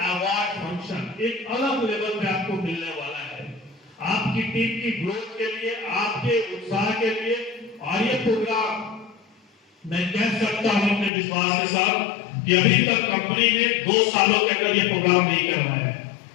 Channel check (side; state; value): right; drops out; at 11.1 s